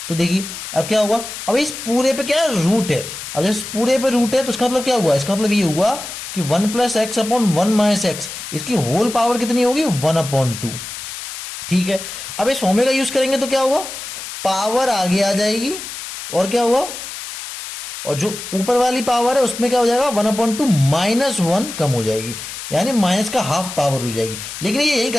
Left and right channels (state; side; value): noise; left; hiss, 9 dB below the sound